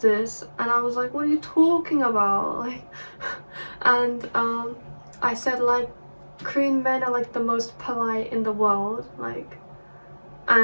And I was like, what are you talking about? Like, and I said, like, Korean men are like the most polite in the world, like,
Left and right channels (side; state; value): both; inverted; correlation -1.00